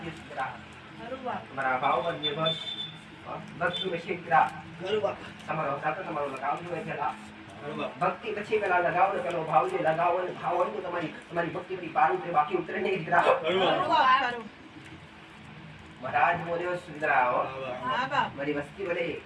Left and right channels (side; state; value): both; identical; correlation 1.00